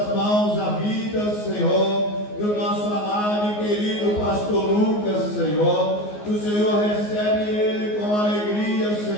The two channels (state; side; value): late; right; 14 ms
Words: mãos a vida, Senhor, do nosso amado e querido pastor Lucas, Senhor. O Senhor recebe ele com alegria,